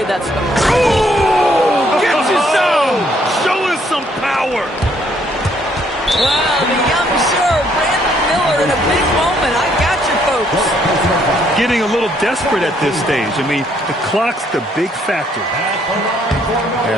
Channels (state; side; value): normal; both; correlation 0.68